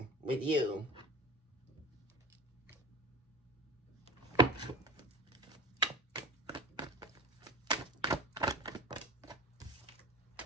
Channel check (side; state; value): both; normal; correlation 0.32